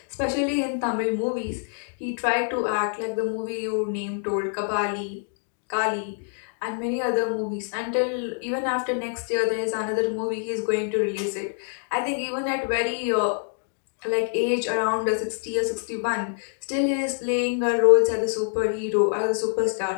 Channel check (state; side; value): silent; right; 61 dB below the other